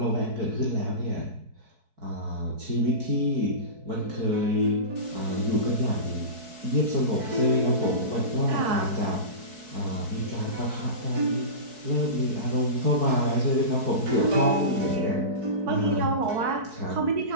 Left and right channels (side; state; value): left; late; 4.6 ms